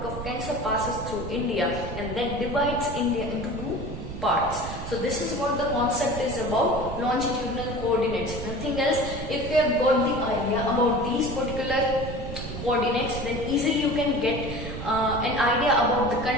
of Cancer passes through India and then divides India into two parts. So this is what the concept is about longitudinal coordinates, nothing else. If you have got the idea about these particular coordinates, then easily you can get an idea about the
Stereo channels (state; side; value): noise; right; rumble, 8 dB below the sound